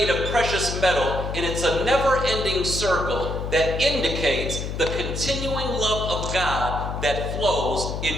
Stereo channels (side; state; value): left; noise; hum, 5 dB below the sound